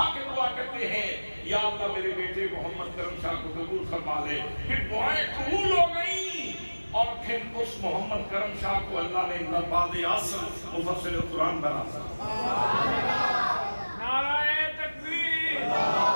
کے دعا کرتے ہیں، یا اللہ میرے بیٹے محمد کرم شاہ کو قبول فرما لے۔ پھر دعائیں قبول ہو گئیں اور پھر اس محمد کرم شاہ کو اللہ نے نباد اعظم مفسر قرآن بنا دیا۔ نعرہ تکبیر،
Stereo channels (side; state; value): both; inverted; correlation -1.00